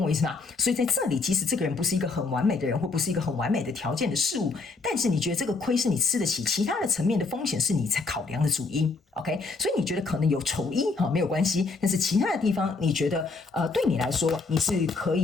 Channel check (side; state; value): right; quieter; 4.0 dB